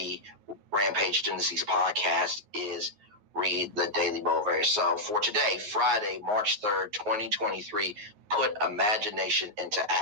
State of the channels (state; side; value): late; left; 9.5 ms